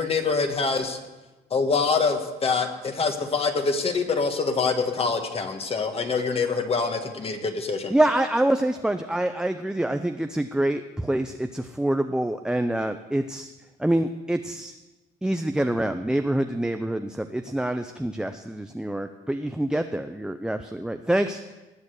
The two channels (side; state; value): both; normal; correlation 0.70